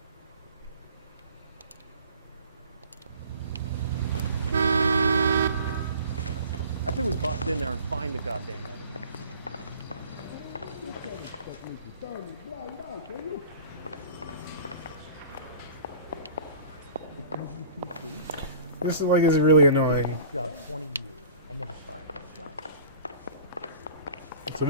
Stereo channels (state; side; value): inverted; both; correlation -0.44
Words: I think we bust in there and find the goddamn evidence. This is like is really annoying. Job 20 years. I never fired a job. So